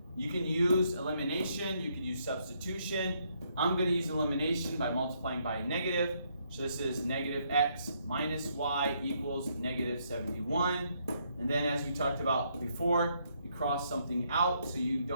You can use elimination, you can use substitution. I'm going to use elimination by multiplying by a negative. So this is -x minus y equals -71. And then as we talked about before, you cross something out so you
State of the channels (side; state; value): both; inverted; correlation -0.73